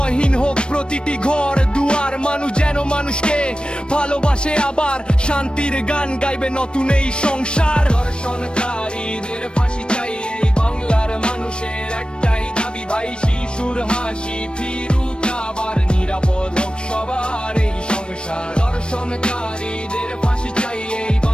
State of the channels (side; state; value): right; late; 0.055 ms